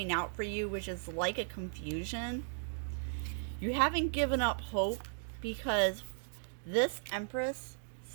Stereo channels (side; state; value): left; silent; digital silence